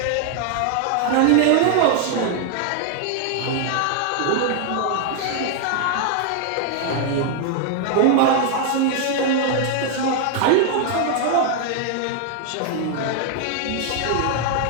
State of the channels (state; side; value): different; both; correlation 0.00